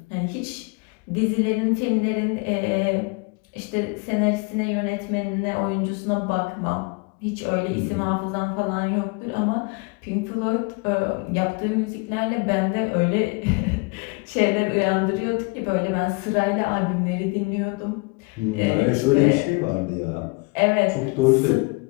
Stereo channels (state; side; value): quieter; right; 29.6 dB